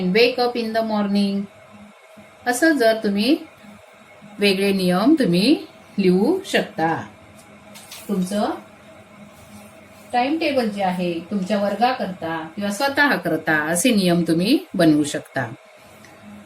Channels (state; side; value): identical; both; correlation 1.00